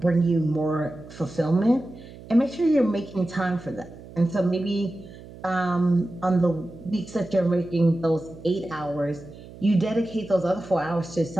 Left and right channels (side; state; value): right; noise; hum, 17 dB below the sound